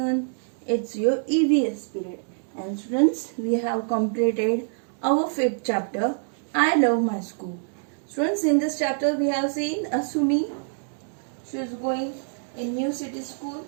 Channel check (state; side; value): silent; left; digital silence